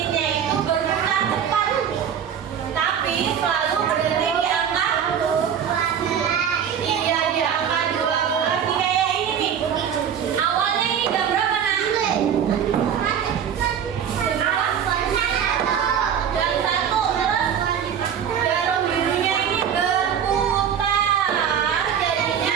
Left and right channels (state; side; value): quieter; left; 8.4 dB